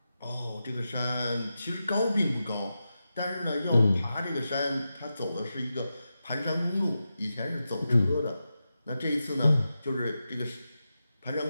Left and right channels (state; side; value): inverted; both; correlation -0.90